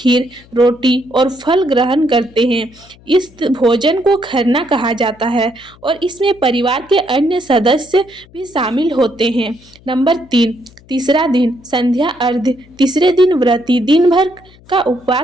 रोटी और फल ग्रहण करते हैं। इस भोजन को खरना कहा जाता है और इसमें परिवार के अन्य सदस्य भी शामिल होते हैं। नंबर 3, तीसरा दिन संध्या अर्घ्य। तीसरे दिन व्रती दिन भर का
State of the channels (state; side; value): noise; left; hum, 26 dB below the sound